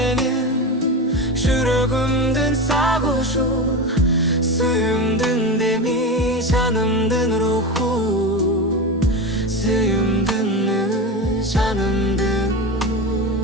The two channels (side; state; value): both; normal; correlation 0.21